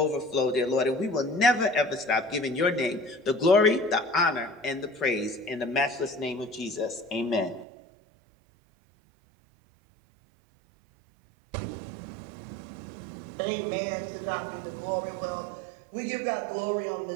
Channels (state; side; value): drops out; left; at 7.7 s